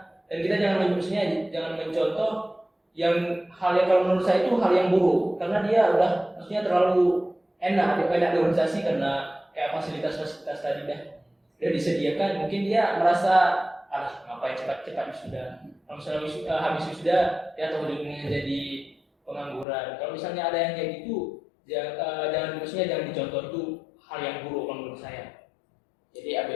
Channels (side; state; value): right; drops out; at 19.7 s